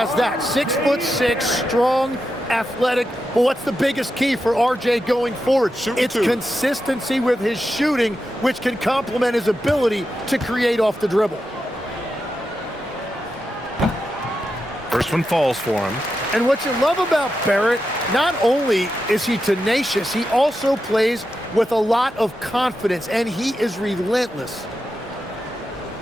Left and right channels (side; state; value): both; normal; correlation 0.88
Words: that. 6'6", strong, athletic. But what's the biggest key for R.J. going forward? It's consistency with his shooting, which can complement his ability to create off the dribble. First one falls for him. And what you love about Barrett, not only is he tenacious, he also plays with a lot of confidence, and he is relentless.